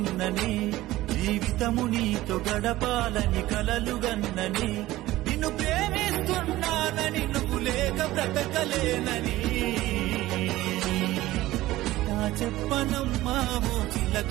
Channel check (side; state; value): left; quieter; 16.7 dB